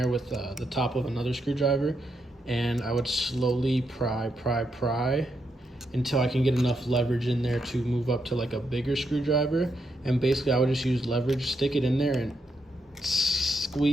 with the top of another screwdriver, and I would slowly pry until I can get enough leverage in there to move up to like a bigger screwdriver. And basically I would just use leverage, stick it in there and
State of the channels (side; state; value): both; normal; correlation 0.81